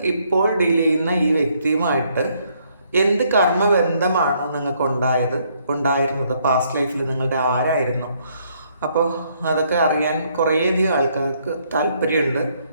ഇപ്പോൾ ഡീൽ ചെയ്യുന്ന ഈ വ്യക്തിയുമായിട്ട് എന്ത് കർമ്മബന്ധമാണ് നിങ്ങൾക്ക് ഉണ്ടായിരുന്നത്, പാസ്റ്റ് ലൈഫിൽ നിങ്ങളുടെ ആരായിരുന്നു? അപ്പോൾ അതൊക്കെ അറിയാൻ കുറേയധികം ആൾക്കാർക്ക് താല്പര്യമുണ്ട്.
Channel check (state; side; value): inverted; both; correlation -0.69